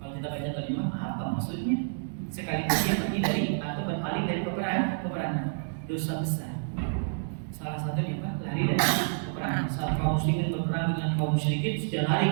kita baca terjemah apa maksudnya? Sekalipun dia pergi dari atau berpaling dari peperangan, dosa besar. Salah satunya Pak, lari dari peperangan. Saat kaum muslimin berperang dengan kaum musyrikin, sudah lari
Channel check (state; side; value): silent; left; digital silence